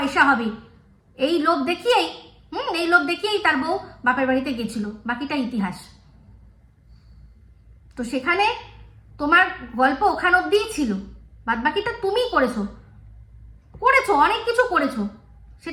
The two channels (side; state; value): both; identical; correlation 1.00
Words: হবে এই লোভ দেখিয়েই এই লোভ দেখিয়েই তার বউ বাপের বাড়িতে গেছিল, বাকিটা ইতিহাস। তো সেখানে তোমার গল্প ওখান অব্দিই ছিল, বাদ বাকিটা তুমিই করেছো, অনেক কিছু করেছো,